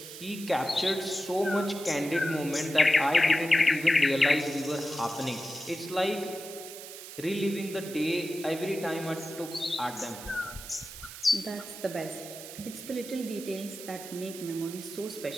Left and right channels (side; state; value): right; noise; hiss, 12 dB below the sound